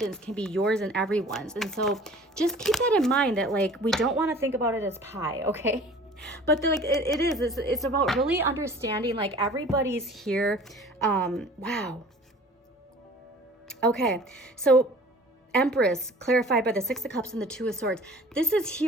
can be yours and everyone's. And so just keep that in mind, that like, we don't want to think about it as pie, okay? But like it's about really understanding like everybody's here. Wow. Okay, so Empress clarified by the 6 of Cups and the 2 of Swords. This is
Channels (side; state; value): both; normal; correlation 0.46